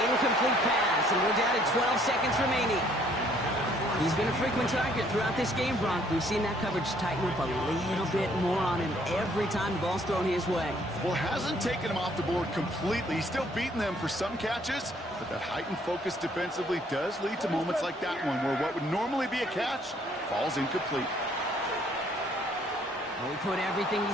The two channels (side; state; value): both; normal; correlation 0.63